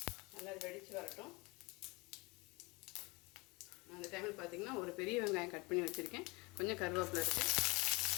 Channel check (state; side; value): quieter; right; 25.2 dB